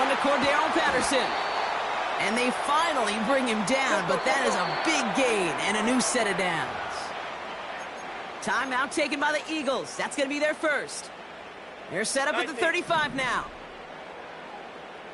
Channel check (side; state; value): both; identical; correlation 1.00